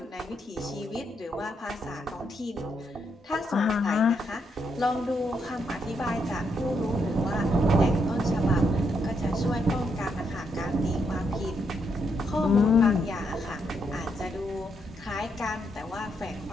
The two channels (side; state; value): both; normal; correlation 0.78